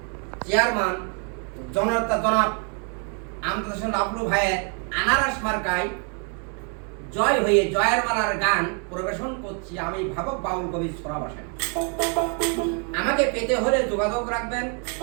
চেয়ারম্যান জনাব আমদাদ লাবলু ভাইয়ের আনারস মার্কায় জয় হয়ে জয়ের মালার গান পরিবেশন করছি আমি ভাবক বাউল কবি সোরা বাসায়। আমাকে পেতে হলে যোগাযোগ রাখবেন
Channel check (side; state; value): left; quieter; 39.5 dB